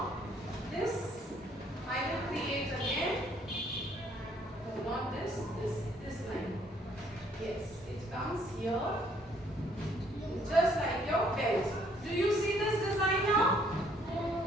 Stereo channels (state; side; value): normal; both; correlation 0.65